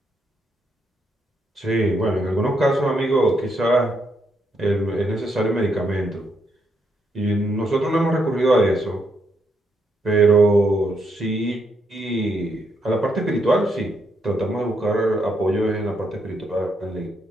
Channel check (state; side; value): normal; both; correlation 0.77